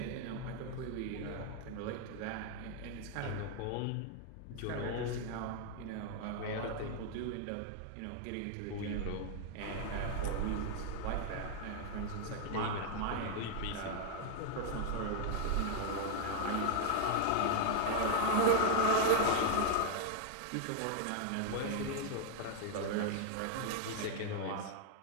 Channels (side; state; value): both; different; correlation 0.00